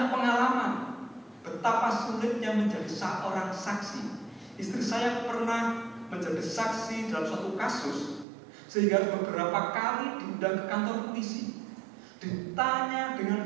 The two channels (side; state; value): left; drops out; at 8.2 s